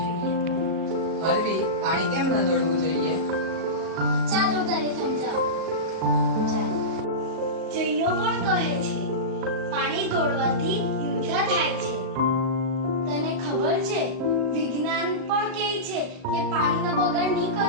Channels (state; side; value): late; left; 38 ms